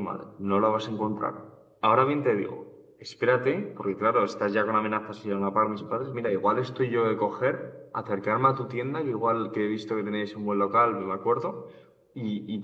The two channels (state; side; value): identical; both; correlation 1.00